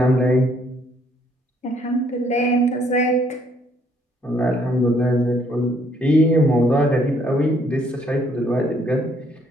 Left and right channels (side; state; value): both; normal; correlation 0.66